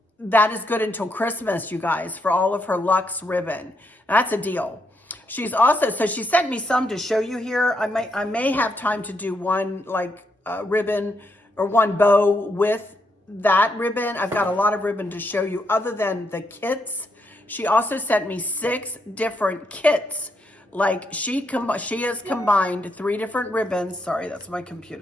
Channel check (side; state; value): both; normal; correlation 0.78